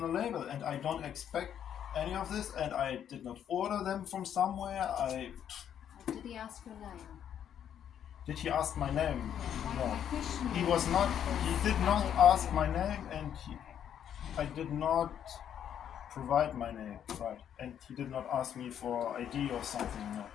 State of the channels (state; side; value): quieter; right; 9.4 dB